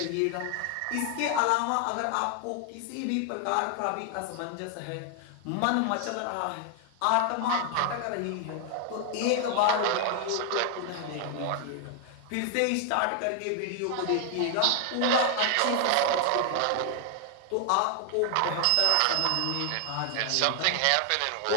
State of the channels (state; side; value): different; both; correlation 0.00